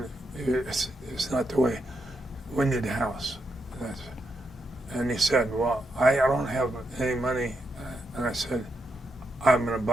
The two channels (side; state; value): both; normal; correlation 0.82